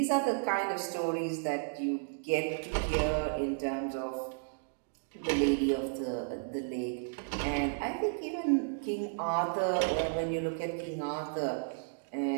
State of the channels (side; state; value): left; silent; digital silence